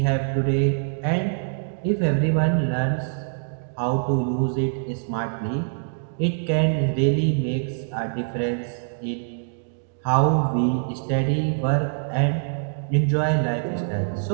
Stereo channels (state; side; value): silent; left; digital silence